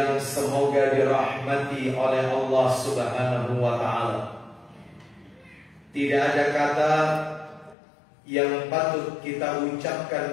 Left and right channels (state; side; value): drops out; right; at 7.8 s